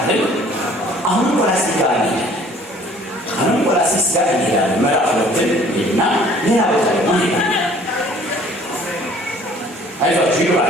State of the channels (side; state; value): both; normal; correlation 0.54